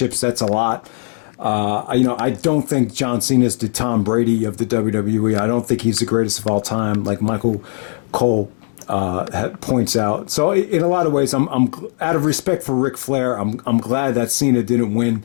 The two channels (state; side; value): silent; right; digital silence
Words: that's a lot. I don't think John Cena is the Tom Brady of the WWE. I don't think he's the greatest of all time, like Michael Cole points out. So in a lot of ways, I'm out of respect for Ric Flair, I'm glad that Cena didn't win